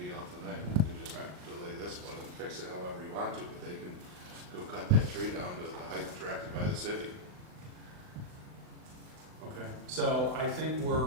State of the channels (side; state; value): left; late; 39 ms